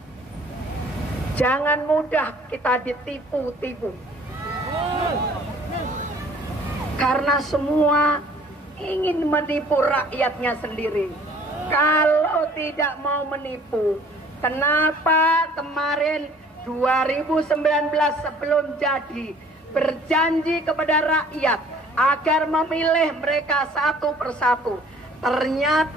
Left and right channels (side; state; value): both; normal; correlation 0.53